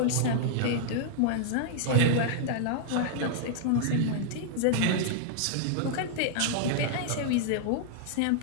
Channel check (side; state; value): both; different; correlation -0.01